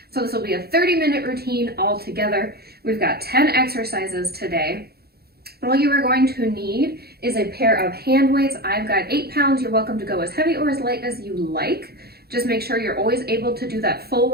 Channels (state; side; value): late; left; 0.46 ms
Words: So this will be a 30-minute routine all together. We've got 10 exercises today. All you are going to need is a pair of hand weights. I've got 8 pounds. You're welcome to go as heavy or as light as you like. Just make sure you're always able to do that full